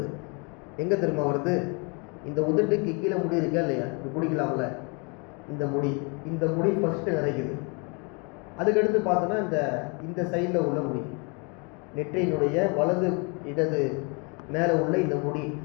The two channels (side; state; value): right; quieter; 32.8 dB